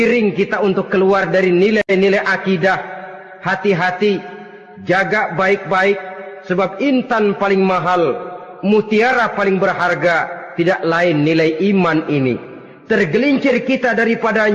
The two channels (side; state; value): both; identical; correlation 1.00